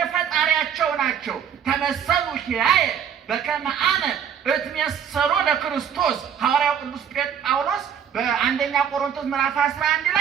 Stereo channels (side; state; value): left; quieter; 8.3 dB